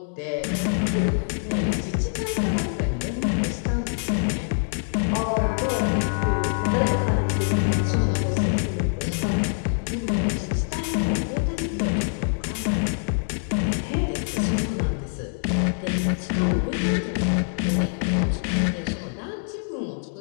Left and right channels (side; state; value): right; silent; digital silence